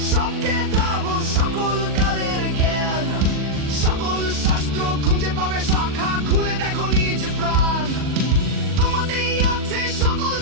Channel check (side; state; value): left; late; 40 ms